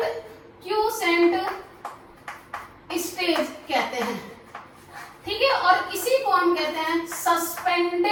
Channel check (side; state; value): both; identical; correlation 1.00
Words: स्टेज कहते हैं। ठीक है, और इसी को हम कहते हैं